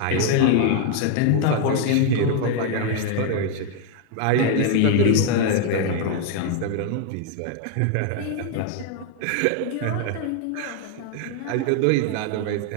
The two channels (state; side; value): different; both; correlation 0.00